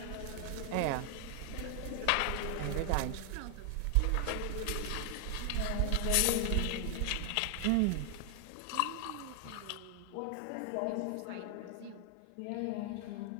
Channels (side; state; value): both; different; correlation 0.00